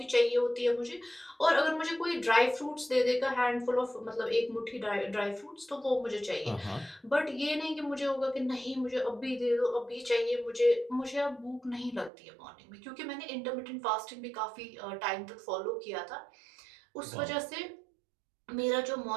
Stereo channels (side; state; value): left; drops out; at 12.1 s